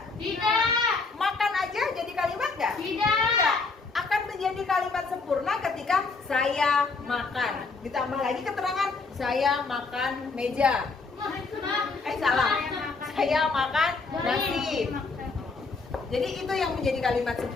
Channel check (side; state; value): right; quieter; 4.1 dB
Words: Tidak. Makan aja jadi kalimat nggak? Tidak. Akan menjadi kalimat sempurna ketika saya makan. Ditambah lagi keterangan saya makan meja. Salah. Saya makan nasi. Jadi itu yang menjadi kalimat